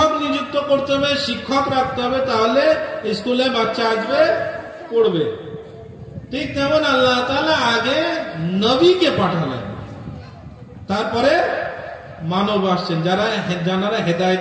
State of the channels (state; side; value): identical; both; correlation 1.00